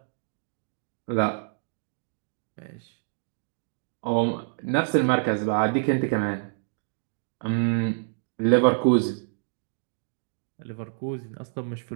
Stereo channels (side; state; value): left; silent; digital silence